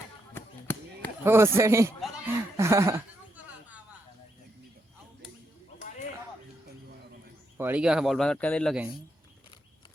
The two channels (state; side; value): normal; both; correlation 0.81